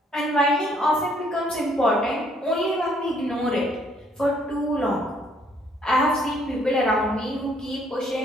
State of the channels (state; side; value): normal; both; correlation 0.65